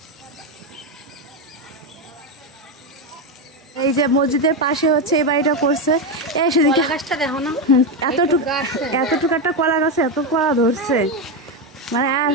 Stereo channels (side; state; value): both; normal; correlation 0.10